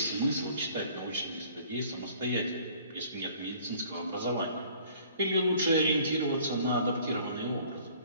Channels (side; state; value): both; inverted; correlation -0.54